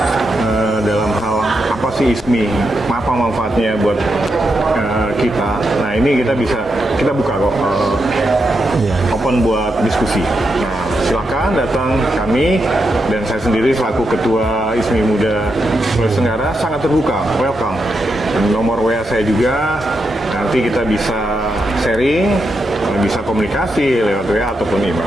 dalam hal apa sih ISMI, apa manfaatnya buat kita. Nah, ini kita buka kok, open buat diskusi. Nah, silakan datang, kami dan saya sendiri selaku Ketua ISMI Muda Sulawesi Tenggara sangat terbuka, welcome. Dan nomor WA saya juga, nanti kita bisa sharing, bisa komunikasi lewat WA ataupun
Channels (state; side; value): normal; both; correlation 0.84